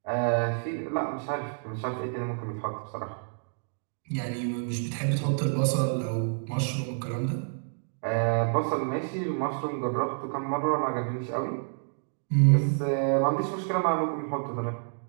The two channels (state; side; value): silent; left; digital silence